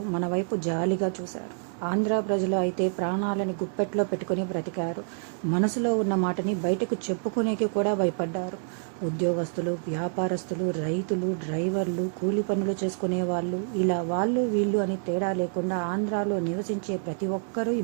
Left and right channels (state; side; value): silent; left; 60 dB below the other